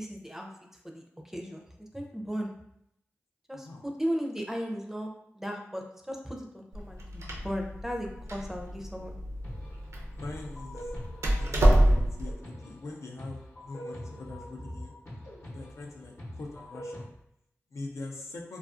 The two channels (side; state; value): both; normal; correlation 0.96